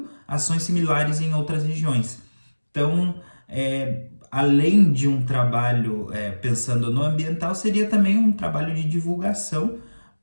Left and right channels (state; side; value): inverted; both; correlation -1.00